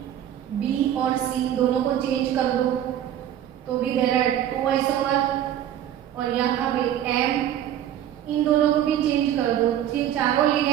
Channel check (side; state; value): left; quieter; 11.0 dB